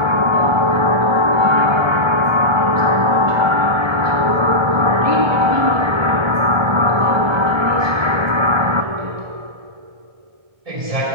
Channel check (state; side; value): late; left; 1.2 ms